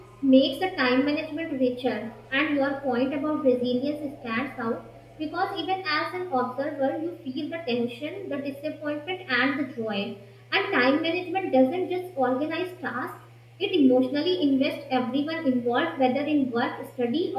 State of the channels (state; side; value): identical; both; correlation 1.00